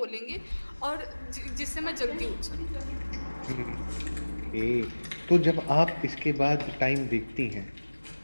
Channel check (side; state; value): both; inverted; correlation -1.00